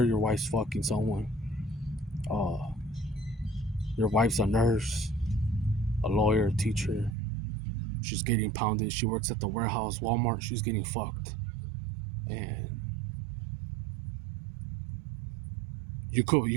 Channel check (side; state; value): left; drops out; at 7.2 s